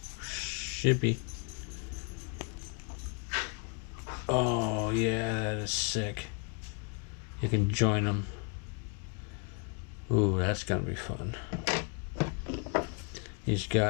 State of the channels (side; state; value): right; quieter; 36.3 dB